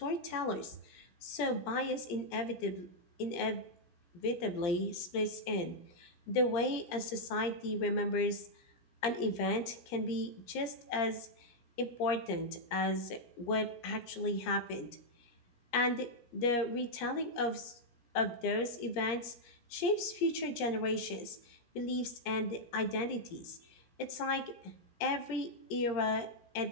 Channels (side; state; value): right; late; 17 ms